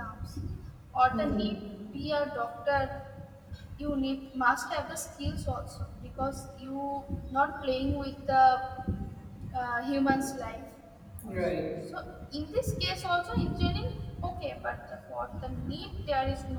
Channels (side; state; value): both; identical; correlation 1.00